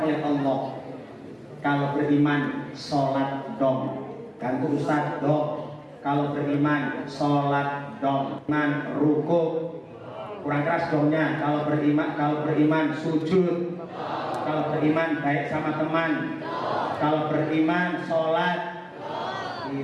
oleh Allah. Kalau beriman, sholat dong, ganti ustaz dong. Kalau beriman sholat dong, iman ruku, kurang keras dongnya. Kalau beriman sujud, kalau beriman baik sama teman, kalau beriman sholat.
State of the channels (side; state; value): both; identical; correlation 1.00